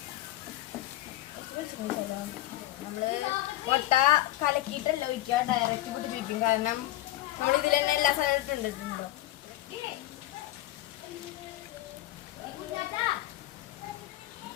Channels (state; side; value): quieter; right; 16.1 dB